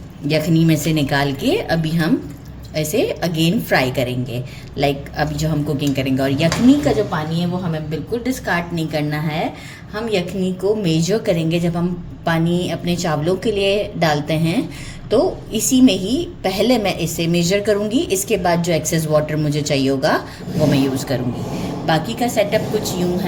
यखनी में से निकाल के अभी हम ऐसे अगेन फ्राई करेंगे, लाइक अभी जो हम कुकिंग करेंगे। और यखनी का जो पानी है वो हमें बिल्कुल डिस्कार्ड नहीं करना है। हम यखनी को मेजर करेंगे। जब हम पानी अपने चावलों के लिए डालते हैं तो इसी में ही पहले मैं इसे मेजर करूँगी, इसके बाद जो एक्सेस वाटर मुझे चाहिए होगा वो मैं यूज़ करूँगी। बाकी का सेटअप कुछ यूँ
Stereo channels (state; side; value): identical; both; correlation 1.00